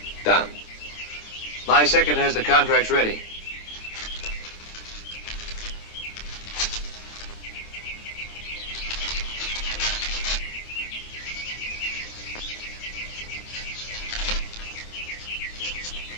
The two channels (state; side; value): late; right; 27 ms